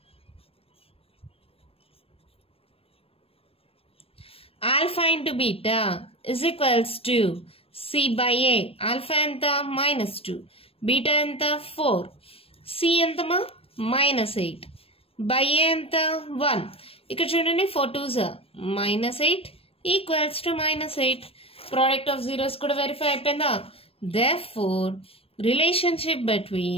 Alpha into beta is equals to C by A. Alpha ఎంత? -2, బీటా ఎంత? 4, సి ఎంతమా? -8, బై ఏ ఎంత? 1. ఇక్కడ చూడండి 4 2s -8 equals to -8. Product of zeros కూడా వెరిఫై అయిపోయిందా? Therefore, relationship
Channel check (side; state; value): right; late; 0.28 ms